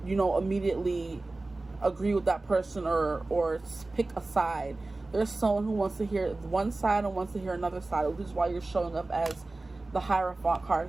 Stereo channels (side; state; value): left; quieter; 3.1 dB